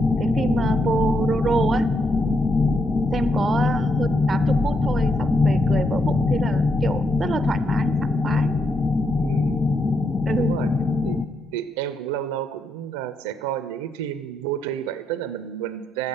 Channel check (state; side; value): normal; both; correlation 0.79